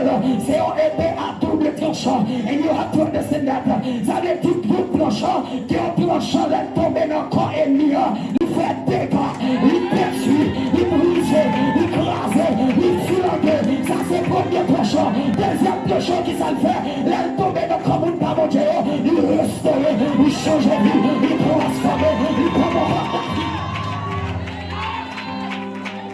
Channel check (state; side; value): identical; both; correlation 1.00